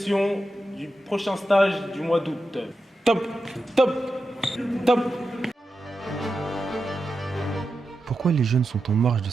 du prochain stage du mois d'août. Top, top, top. Pourquoi les jeunes sont en marge de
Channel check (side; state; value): both; normal; correlation 0.90